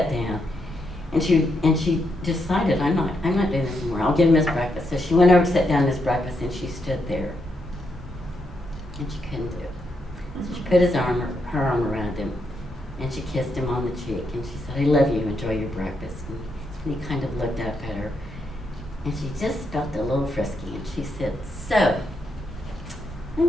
down, and she decided, I'm not doing this anymore. I'll give him his breakfast. So she went over to sit down his breakfast, and she stood there, and she couldn't do it. So she put her arm around him, and she kissed him on the cheek, and she said, I love you, enjoy your breakfast. And he kind of looked up at her, and she just felt a little frisky, and she said, so, let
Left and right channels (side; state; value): both; normal; correlation 0.80